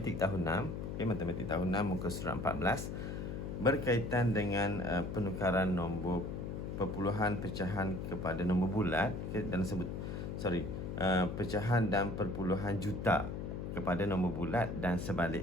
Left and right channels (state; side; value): noise; left; hum, 5 dB below the sound